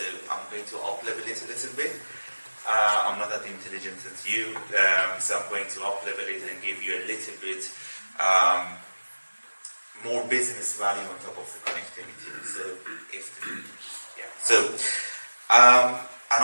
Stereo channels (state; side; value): inverted; both; correlation -1.00